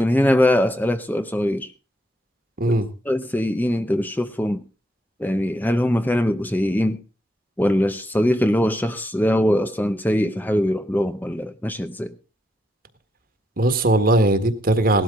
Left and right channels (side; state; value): both; normal; correlation 0.78